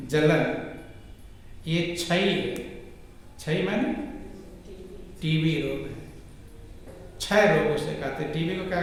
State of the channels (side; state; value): both; identical; correlation 1.00